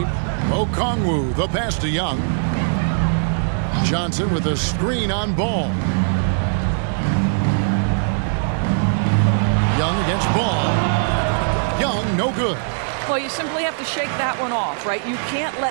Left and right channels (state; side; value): silent; left; digital silence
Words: Okongwu, the pass to Young. Johnson with a screen on Ball. Young against Ball. Young, no good. Well, you simply have to shake that one off, right? You can't